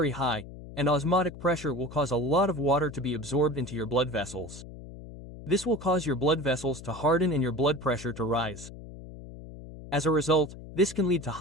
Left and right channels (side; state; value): left; noise; hum, 14 dB below the sound